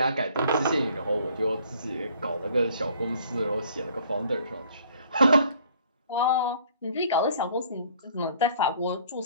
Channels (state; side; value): inverted; both; correlation -0.57